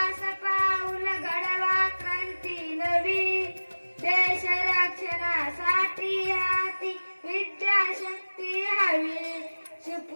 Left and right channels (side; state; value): both; inverted; correlation -1.00